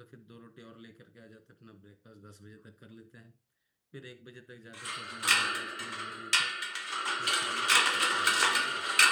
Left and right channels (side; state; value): both; identical; correlation 1.00